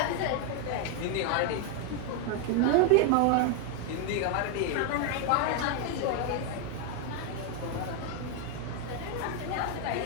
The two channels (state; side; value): different; both; correlation 0.00